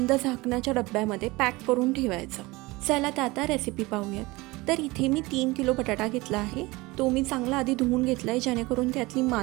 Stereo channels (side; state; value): left; quieter; 22.2 dB